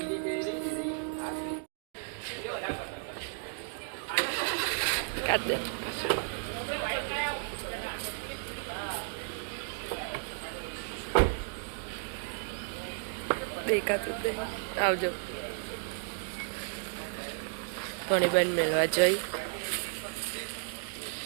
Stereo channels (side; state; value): left; silent; 56 dB below the other